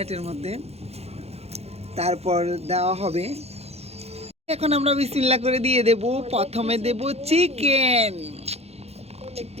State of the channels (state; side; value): late; left; 0.30 ms